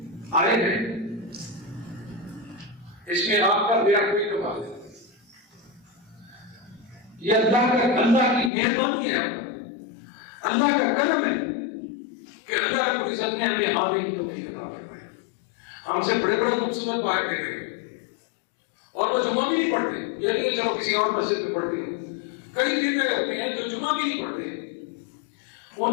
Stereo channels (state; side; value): drops out; right; at 8.5 s